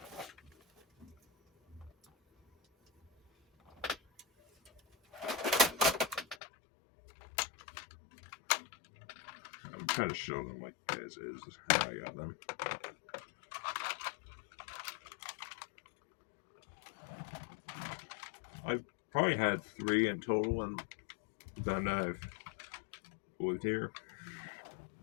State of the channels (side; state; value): right; drops out; at 6.4 s